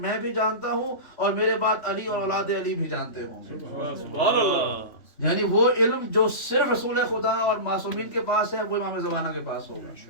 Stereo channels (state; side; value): late; right; 3.3 ms